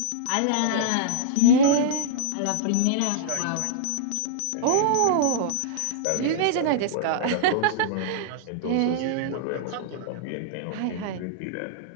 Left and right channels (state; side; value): different; both; correlation -0.01